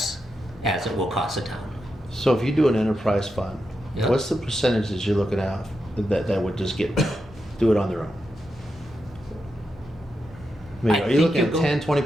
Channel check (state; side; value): normal; both; correlation 0.86